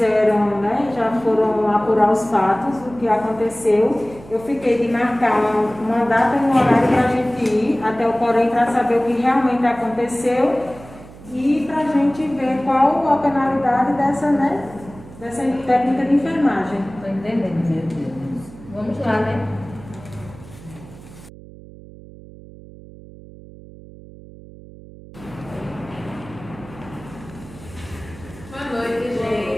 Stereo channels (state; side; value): noise; right; hum, 18 dB below the sound